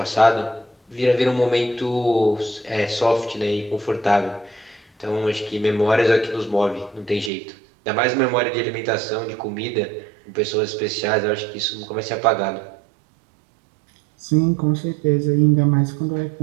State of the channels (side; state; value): left; drops out; at 7.3 s